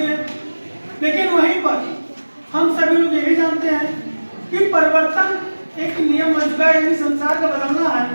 लेकिन वहीं पर हम सभी लोग यही जानते हैं कि परिवर्तन एक नियम बन चुका है, यानी संसार का बदलना है,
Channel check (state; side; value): inverted; both; correlation -1.00